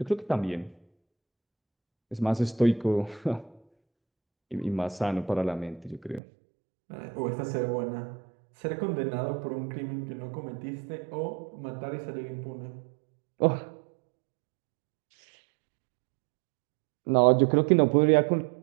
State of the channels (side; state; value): left; drops out; at 6.2 s